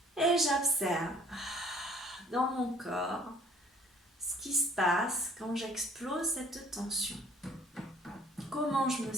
Et j'observe dans mon corps ce qui se passe quand j'explose cette tension. Comment je me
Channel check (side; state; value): both; normal; correlation 0.56